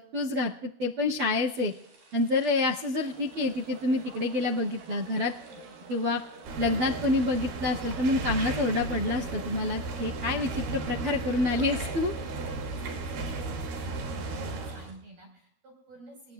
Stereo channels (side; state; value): left; late; 12 ms